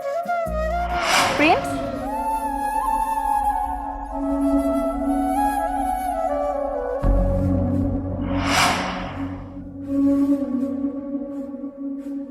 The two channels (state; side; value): identical; both; correlation 1.00